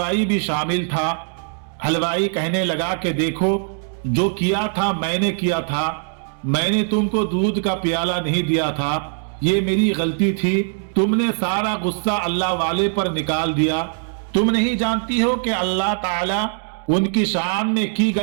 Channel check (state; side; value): silent; left; 62 dB below the other